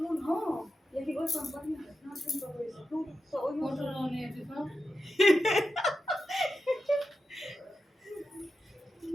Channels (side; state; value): both; normal; correlation 0.90